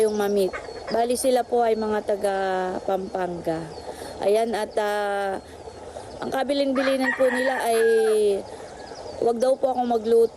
ma-meet. Bali sila po ay mga taga Pampanga. Ayan, at ang kabilin-bilinan po nila ay wag daw po akong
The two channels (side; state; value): both; identical; correlation 1.00